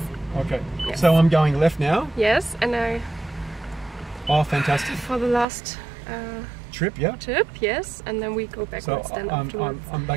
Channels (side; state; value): left; drops out; at 5.5 s